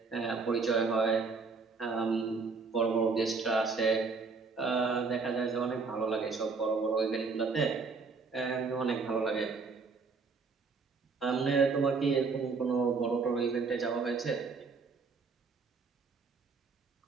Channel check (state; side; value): quieter; left; 4.6 dB